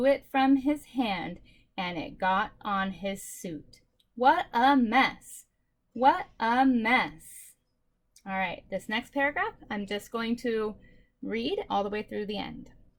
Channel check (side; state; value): both; identical; correlation 1.00